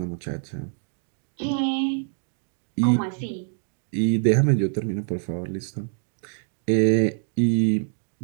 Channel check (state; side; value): silent; left; 58 dB below the other